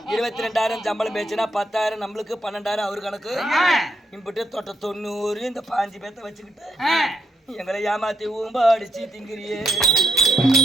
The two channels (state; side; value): normal; both; correlation 0.78